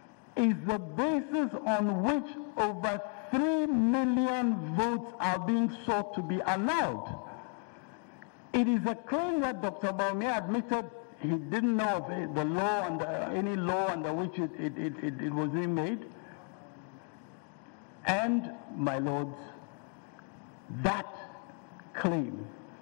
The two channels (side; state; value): right; quieter; 36.0 dB